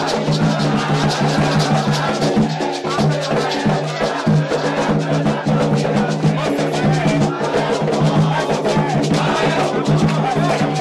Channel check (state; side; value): identical; both; correlation 1.00